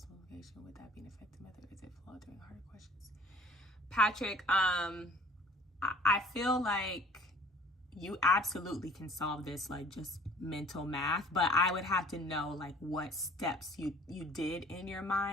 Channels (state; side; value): normal; both; correlation 0.52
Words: multiplication. Would that be an effective method? Is it flawed during harder questions? Patrick, I feel like you absolutely can solve this like just mental math, but I would have to know like what steps you did in your